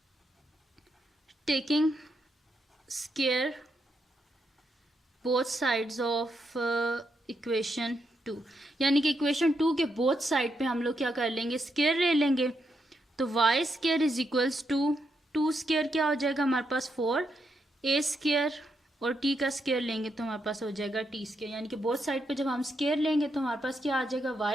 taking square both sides of equation 2, यानी कि इक्वेशन 2 के बोथ साइड पे हम लोग क्या कर लेंगे स्क्वायर ले लेंगे। तो y square is equals to two square क्या हो जाएगा हमारे पास 4, ए स्केयर और टी का स्केयर लेंगे तो हमारे पास हो जाएगा टी स्केयर, यानी कि बोथ साइड पे जब हम स्केयर लेंगे तो हमारे पास क्या आ जाएगा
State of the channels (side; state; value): both; normal; correlation 0.81